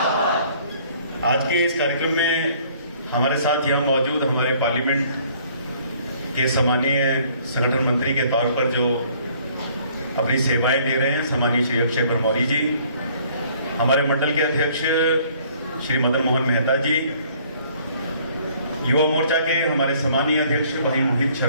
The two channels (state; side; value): inverted; both; correlation -0.59